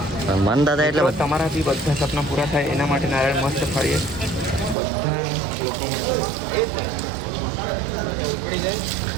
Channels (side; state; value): left; drops out; at 4.8 s